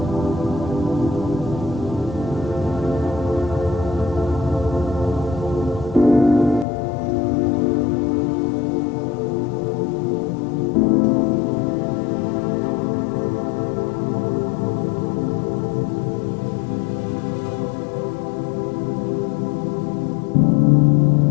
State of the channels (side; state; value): right; drops out; at 6.7 s